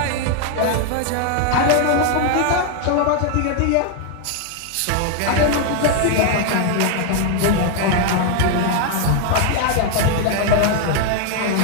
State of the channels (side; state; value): both; different; correlation 0.00